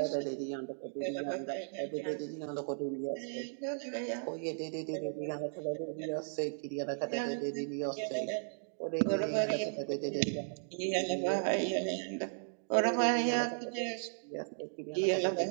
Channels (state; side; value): silent; left; digital silence